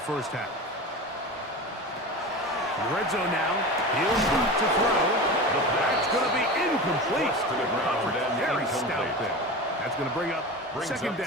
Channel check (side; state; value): both; normal; correlation 0.29